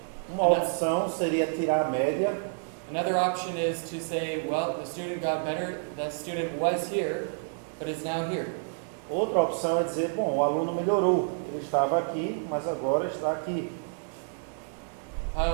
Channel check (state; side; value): silent; left; digital silence